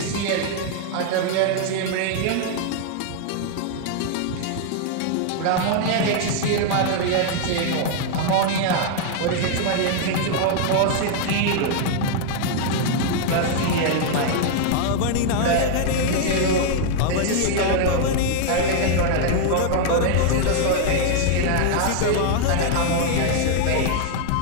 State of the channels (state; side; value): different; both; correlation 0.00